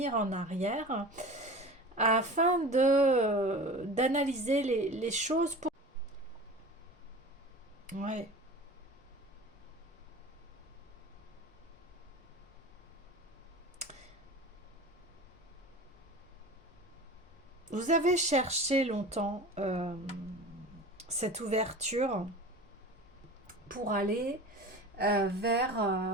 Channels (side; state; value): both; normal; correlation 0.36